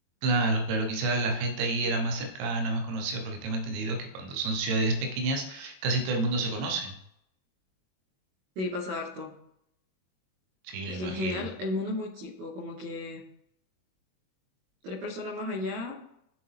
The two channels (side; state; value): left; late; 22 ms